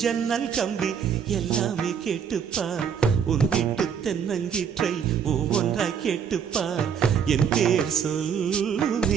ஜன்னல் கம்பி எல்லாமே கேட்டுப்பார் உன் வீட்டு தென்னங்கீற்றை ஒவ்வொன்றாய் கேட்டுப்பார் என் பேர்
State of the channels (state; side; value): quieter; left; 7.4 dB